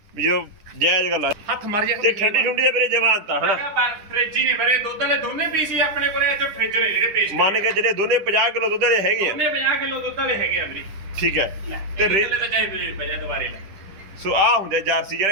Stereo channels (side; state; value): left; late; 10 ms